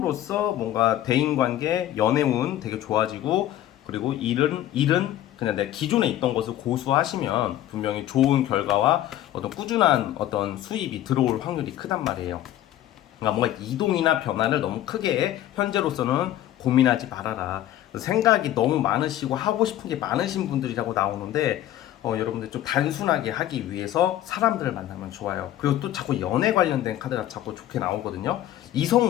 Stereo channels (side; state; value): right; quieter; 13.0 dB